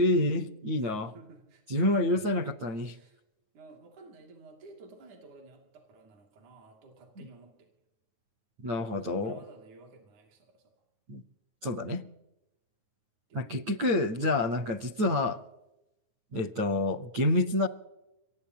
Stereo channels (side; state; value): left; late; 9.4 ms